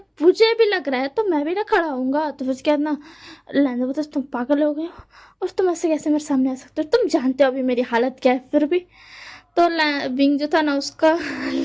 मुझे भी लग रहा है तो मैं भी ना खड़ा होऊंगा। तो फिर उसके बाद ना लहजा बोलता तुम पागल हो गए हो और तुम ऐसे कैसे मेरे सामने आ सकते हो, तुम जानते हो अभी मेरी हालत क्या है। फिर भी तो विंग जो था ना उसका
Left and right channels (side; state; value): both; identical; correlation 1.00